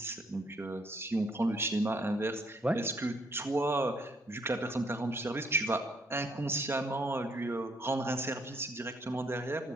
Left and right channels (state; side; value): normal; both; correlation 0.68